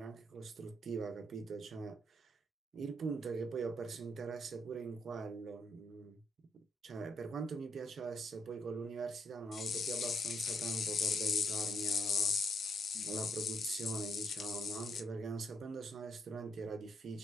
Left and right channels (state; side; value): normal; both; correlation 0.75